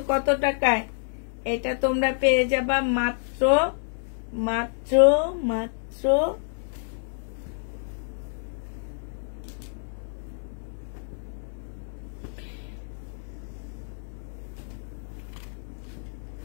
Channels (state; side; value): silent; right; 59 dB below the other